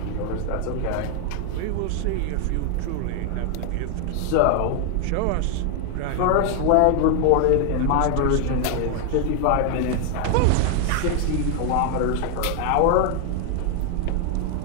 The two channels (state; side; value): different; both; correlation 0.00